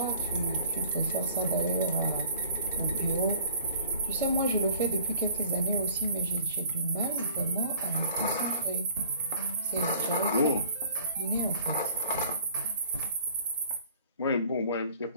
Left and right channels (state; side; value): inverted; both; correlation -0.51